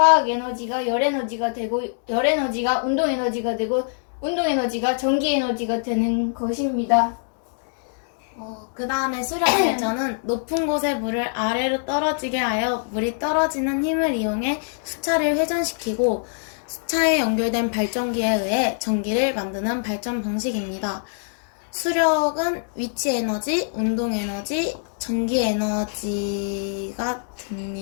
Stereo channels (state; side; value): silent; right; 63 dB below the other